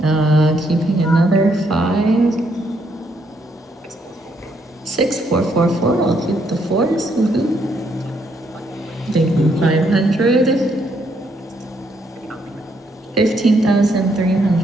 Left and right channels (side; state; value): both; normal; correlation 0.73